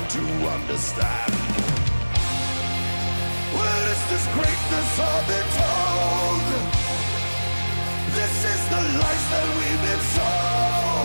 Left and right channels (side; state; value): both; inverted; correlation -1.00